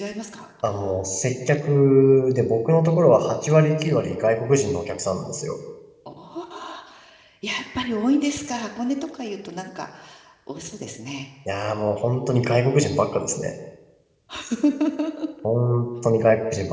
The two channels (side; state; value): both; identical; correlation 1.00